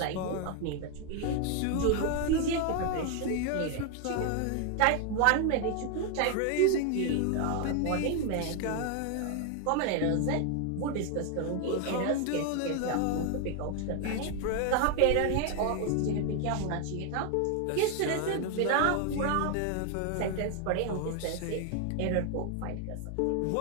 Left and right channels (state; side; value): different; both; correlation 0.01